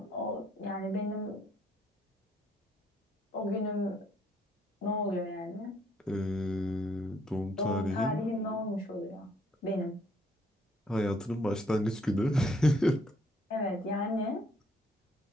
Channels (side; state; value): both; normal; correlation 0.67